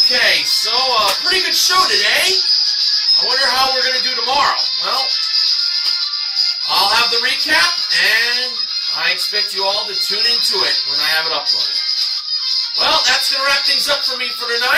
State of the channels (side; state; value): both; identical; correlation 1.00